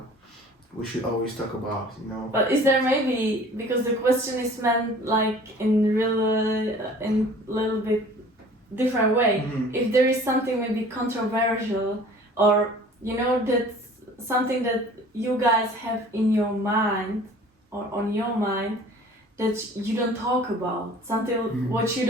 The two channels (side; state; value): both; normal; correlation 0.48